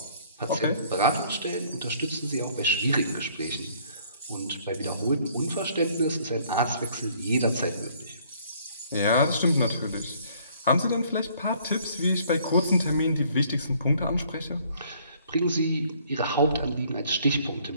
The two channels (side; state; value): both; inverted; correlation -0.60